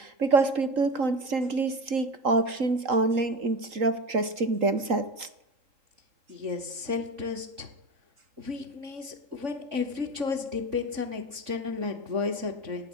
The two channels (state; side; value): late; left; 3.8 ms